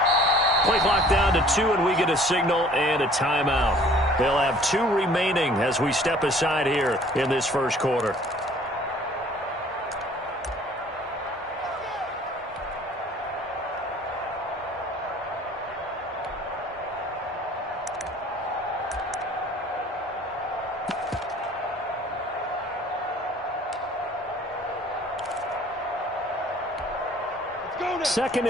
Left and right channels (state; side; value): normal; both; correlation 0.53